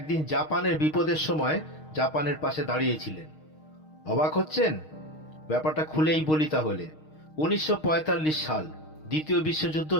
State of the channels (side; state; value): right; late; 6.4 ms